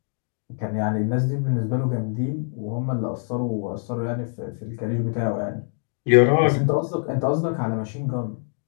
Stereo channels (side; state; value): right; silent; 62 dB below the other